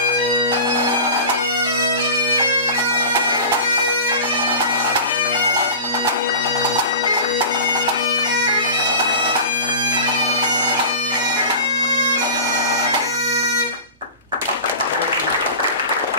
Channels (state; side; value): inverted; both; correlation -0.33